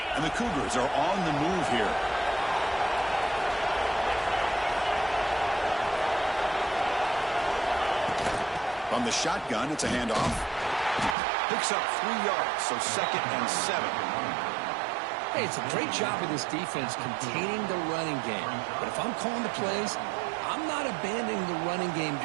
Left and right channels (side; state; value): left; drops out; at 11.2 s